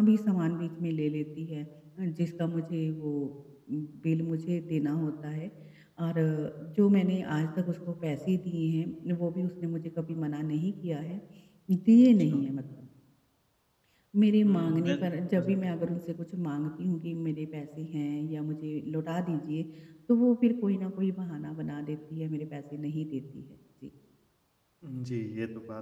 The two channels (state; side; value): identical; both; correlation 1.00